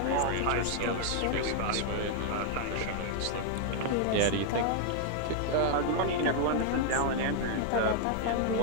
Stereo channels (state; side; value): different; both; correlation 0.00